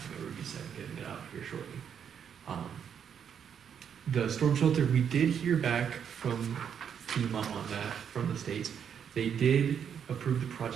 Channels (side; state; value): left; quieter; 8.0 dB